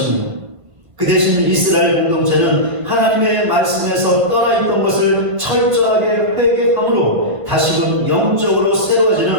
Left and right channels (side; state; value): left; late; 1.7 ms